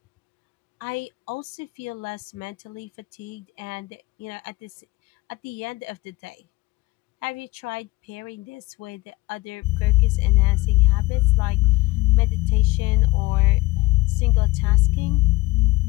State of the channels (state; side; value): quieter; right; 20.9 dB